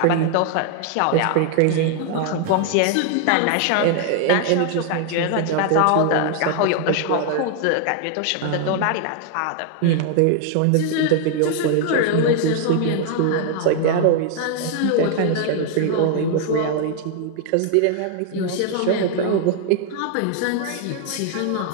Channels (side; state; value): both; different; correlation 0.00